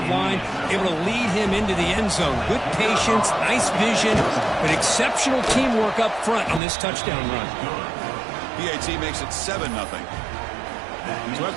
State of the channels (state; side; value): drops out; left; at 6.6 s